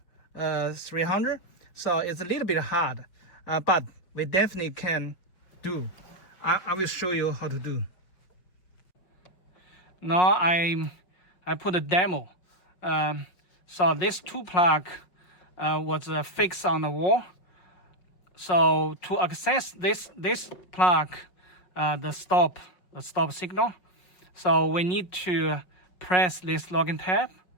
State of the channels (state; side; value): late; right; 5.5 ms